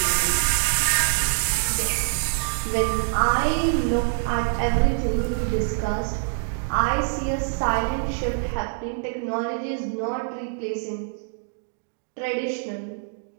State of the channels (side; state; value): left; silent; digital silence